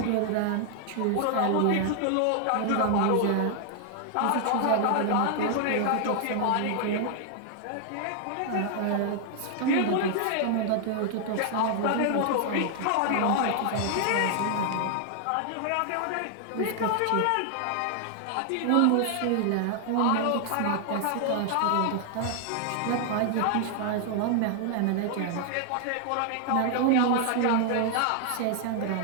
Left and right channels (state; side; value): different; both; correlation 0.00